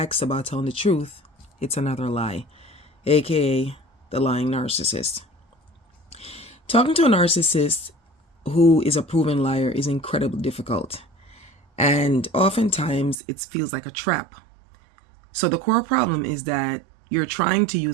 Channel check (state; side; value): drops out; left; at 13.2 s